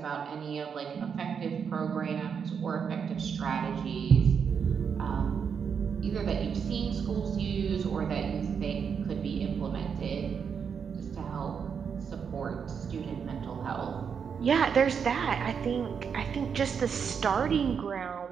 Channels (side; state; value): left; quieter; 6.8 dB